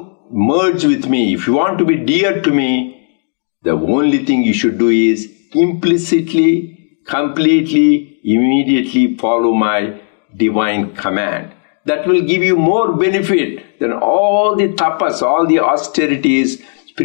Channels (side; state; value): right; silent; 57 dB below the other